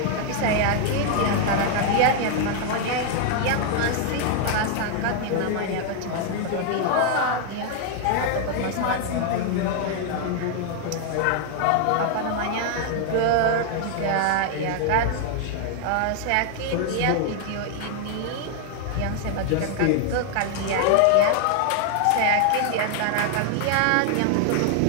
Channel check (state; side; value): different; both; correlation 0.00